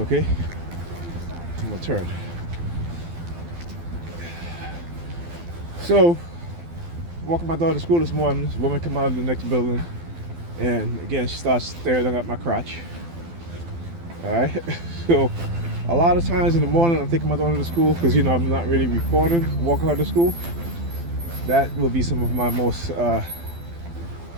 I'm gonna turn. So, walking my daughter to school this morning, this woman come out of the next building, and again she starts staring at my crotch. Alright? So a lot of times in the morning I'm taking my daughter to school because, you know, I'm not really recording, walking her to school. That will be some of my most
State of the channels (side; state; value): left; late; 12 ms